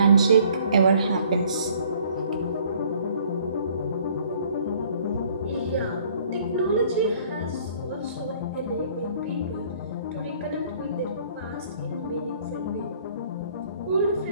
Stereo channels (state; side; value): inverted; both; correlation -0.58